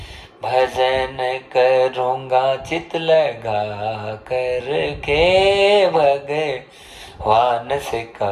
भजन करूंगा चित लगा करके, भगवान से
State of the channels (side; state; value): both; identical; correlation 1.00